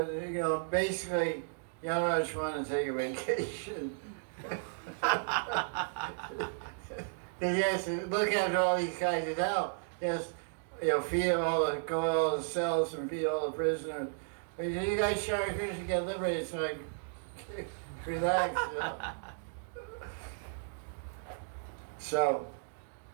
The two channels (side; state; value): left; silent; digital silence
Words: you know, basically, Yamaraj wanted to take a vacation. He has to look after all these guys in hell. Yes, feed all the cells and feed all the prisoners. But you guys show Krishna get liberated, so like, relax. So,